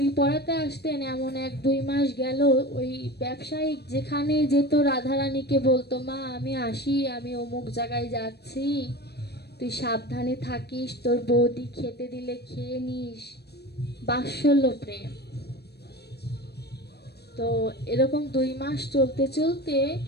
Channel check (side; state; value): right; late; 0.47 ms